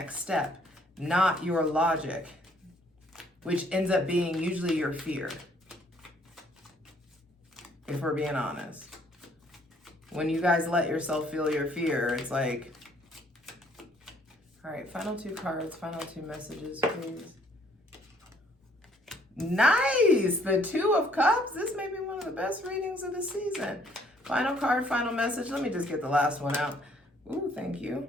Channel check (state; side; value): normal; both; correlation 0.63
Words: step, not your logic, which ends up being usually your fear, if we're being honest. When you guys let yourself feel your fear, it's like, all right, final two cards, final two messages, please. Nice! The Two of Cups. This may be one of the best readings of the season. Final card, final message. Let me just get the last one out. Ooh, thank you.